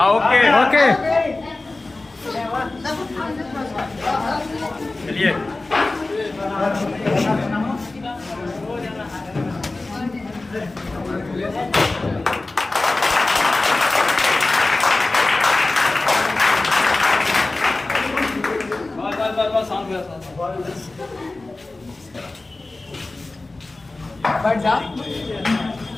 ओके ओके चलिए। बैठ जा।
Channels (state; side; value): quieter; right; 3.1 dB